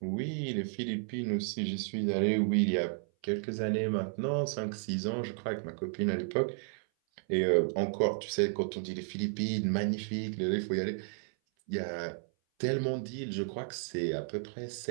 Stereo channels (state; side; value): silent; left; 56 dB below the other